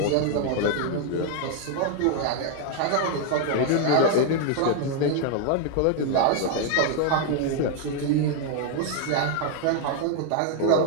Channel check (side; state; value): both; different; correlation 0.00